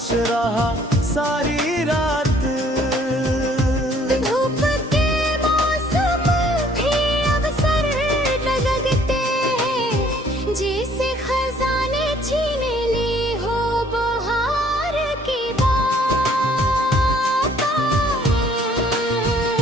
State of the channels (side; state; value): both; normal; correlation 0.60